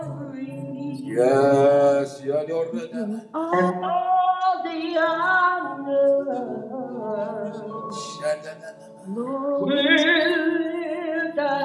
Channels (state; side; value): identical; both; correlation 1.00